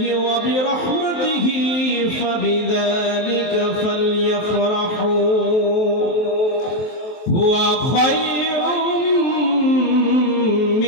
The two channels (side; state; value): right; late; 23 ms